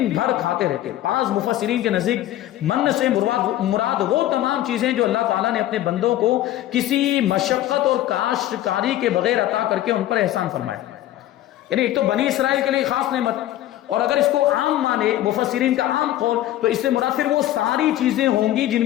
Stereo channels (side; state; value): right; quieter; 13.8 dB